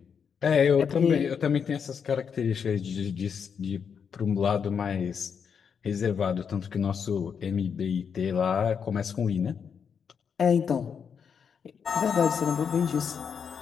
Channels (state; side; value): quieter; right; 6.9 dB